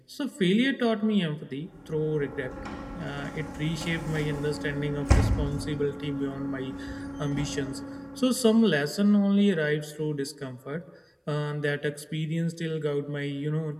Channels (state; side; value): identical; both; correlation 1.00